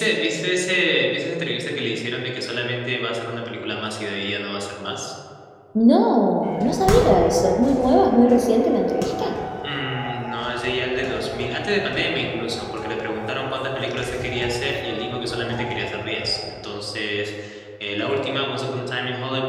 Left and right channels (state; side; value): identical; both; correlation 1.00